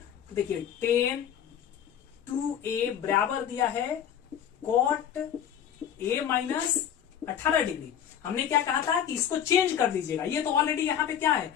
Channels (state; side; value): quieter; right; 9.4 dB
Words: देखिए tan 2a बराबर दिया है cot a माइनस 18 डिग्री। हमने क्या कहा था कि इसको चेंज कर दीजिएगा। ये तो ऑलरेडी यहाँ पे क्या है,